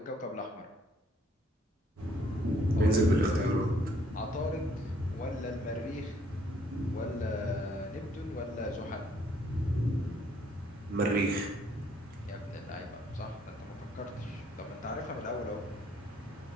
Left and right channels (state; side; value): normal; both; correlation 0.65